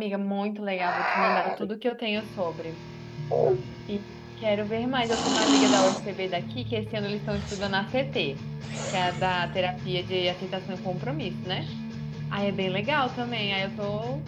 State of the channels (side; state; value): both; identical; correlation 1.00